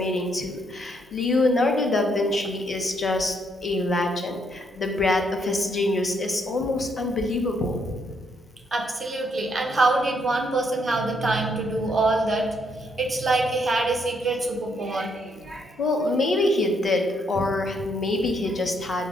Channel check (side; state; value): both; normal; correlation 0.73